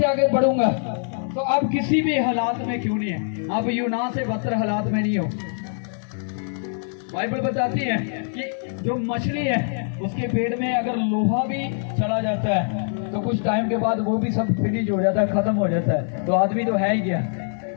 आगे बढ़ूंगा, तो आप किसी भी हालात में क्यों नहीं है, आप यूना से बदतर हालात में नहीं हो। बाइबल बताती है कि जो मछली है उसके पेट में अगर लोहा भी चला जाता है तो कुछ टाइम के बाद वो भी सब फिनिश हो जाता है, खत्म हो जाता है। तो आदमी तो है ही क्या?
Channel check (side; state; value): right; silent; digital silence